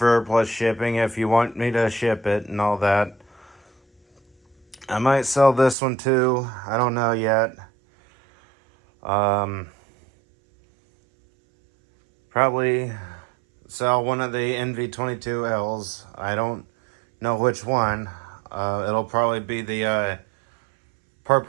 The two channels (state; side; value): drops out; left; at 5.8 s